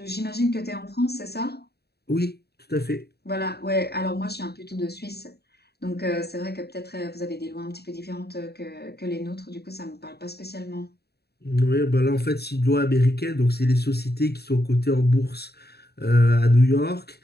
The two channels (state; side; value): late; right; 0.47 ms